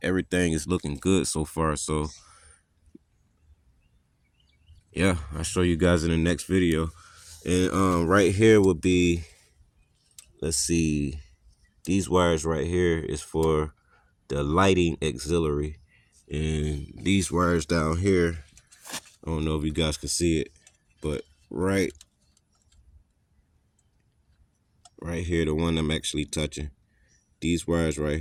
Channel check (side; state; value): both; identical; correlation 1.00